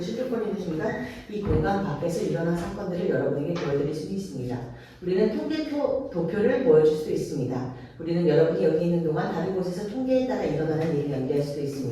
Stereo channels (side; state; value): both; identical; correlation 1.00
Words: 순간 이 공간 밖에서 일어난 사건들을 여러분에게 보여드릴 수 있습니다. 우리는 도표를 보여줄 수 있습니다. 우리는 여러분이 여기 있는 동안 다른 곳에서 통계에 따라 일어나는 일을 연기할 수도